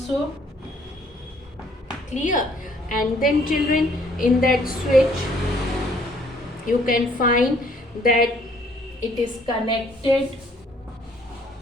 Clear? And then, children, in that switch you can find that it is connected.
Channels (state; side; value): normal; both; correlation 0.62